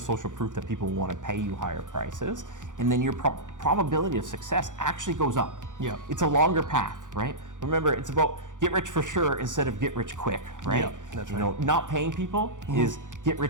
proof that people want to pay you higher prices, and then your probability of success actually goes up. Yeah. It's a longer path, right? Remember, it's about get rich for sure instead of get rich quick, right? Yeah, that's you right. know, not paying people is get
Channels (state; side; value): late; left; 0.87 ms